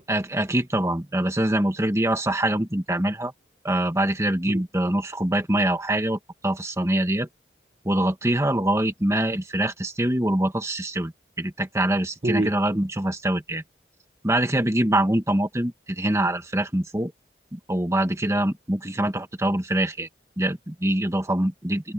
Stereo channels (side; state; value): both; normal; correlation 0.76